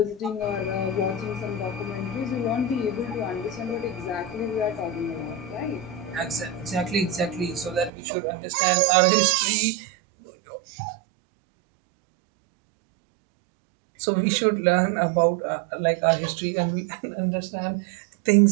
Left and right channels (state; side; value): drops out; left; at 7.9 s